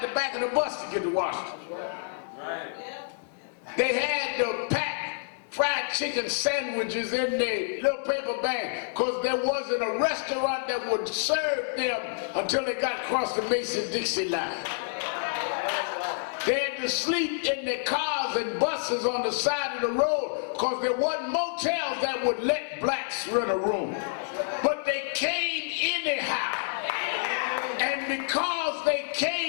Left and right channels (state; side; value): silent; right; digital silence